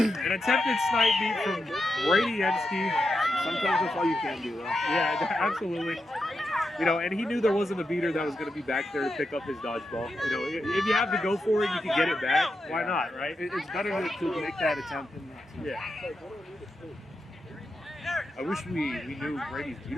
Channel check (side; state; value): both; normal; correlation 0.87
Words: attempted snipe beat from Brady Ensky. Sometimes that's all you can do, though. Yeah, absolutely. And he knew there wasn't a beater that was going to be back there to pick up his dodgeball. If you have to go for it, you can get it back. Why not, right? It's better to make that attempt than not to. Yeah. I wish we knew Brady's